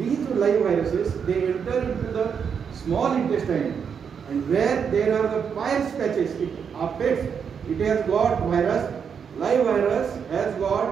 live viruses, they enter into the small intestine, and where there are the Peyer's patches, it affects. It has got virus. Live virus has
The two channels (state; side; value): quieter; left; 6.9 dB